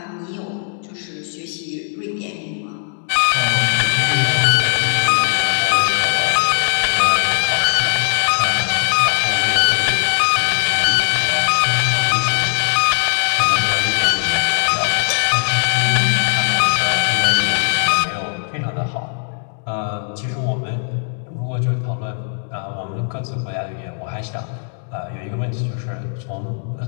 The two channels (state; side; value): silent; right; digital silence